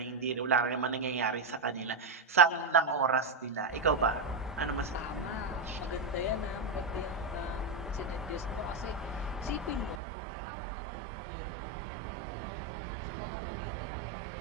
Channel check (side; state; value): left; drops out; at 10.0 s